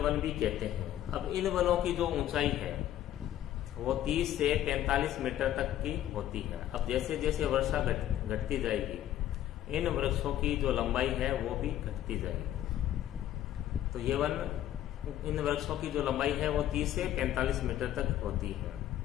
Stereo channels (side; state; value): right; quieter; 12.2 dB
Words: वन भी कहते हैं। अब इन वनों की जो ऊंचाई है वो 30 से 45 मीटर तक की होती है। अब जैसे जैसे वर्षा घटती जाएगी, इन वृक्षों की जो लंबाई है वो भी घटती जाएगी। तो ये वन, इन वृक्षों की जो लंबाई है वो 30 से 45 मीटर तक होती है।